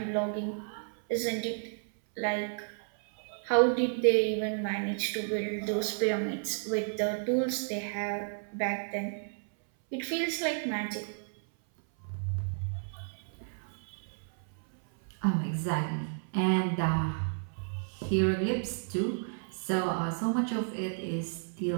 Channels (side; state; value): left; silent; 56 dB below the other